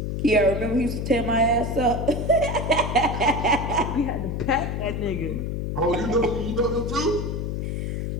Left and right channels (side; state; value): left; noise; hum, 2 dB below the sound